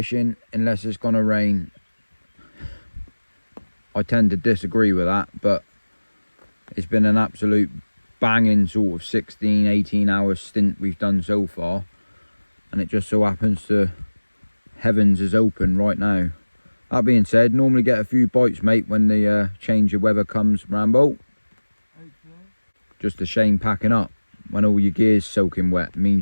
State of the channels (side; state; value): both; inverted; correlation -1.00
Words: unless it's gonna rain. I tend to disagree with that, but it's been an absolute banging sort of 16, 18 hour stint we've done so far. And it just so happens the heavens is open right now. That being said, normally get a few bites, mate, when the change of weather comes, Rambo. Okay. Just a shame packing up. When all your gear's soaking wet,